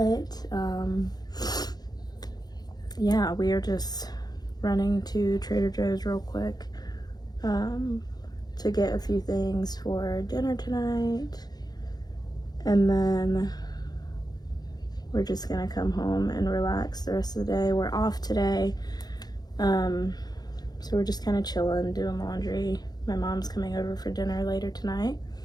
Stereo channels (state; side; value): late; right; 0.19 ms